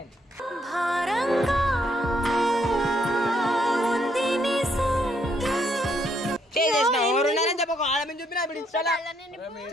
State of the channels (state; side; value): normal; both; correlation 0.72